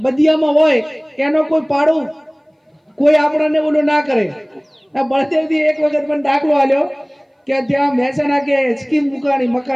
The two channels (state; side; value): identical; both; correlation 1.00